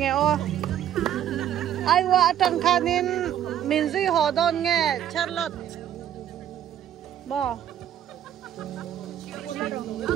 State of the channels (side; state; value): left; quieter; 10.8 dB